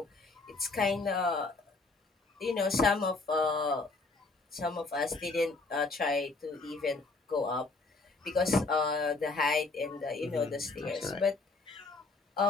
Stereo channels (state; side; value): quieter; right; 3.7 dB